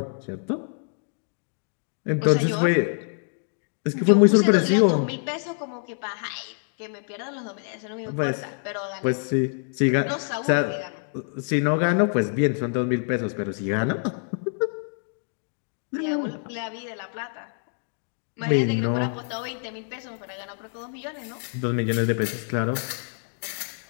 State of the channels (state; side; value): silent; right; 57 dB below the other